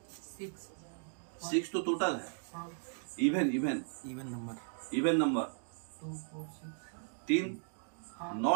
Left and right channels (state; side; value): silent; left; digital silence